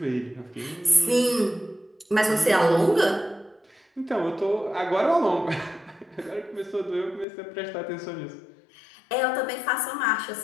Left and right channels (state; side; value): drops out; right; at 7.2 s